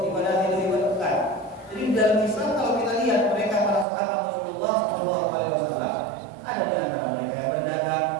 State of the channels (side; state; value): left; drops out; at 3.9 s